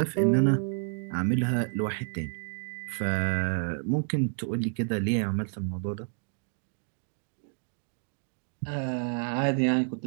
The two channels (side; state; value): left; silent; 58 dB below the other